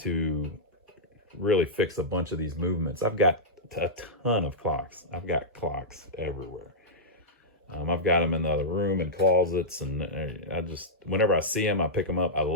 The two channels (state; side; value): normal; both; correlation -0.10